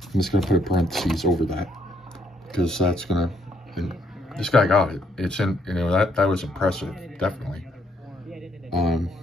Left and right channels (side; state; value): both; normal; correlation 0.70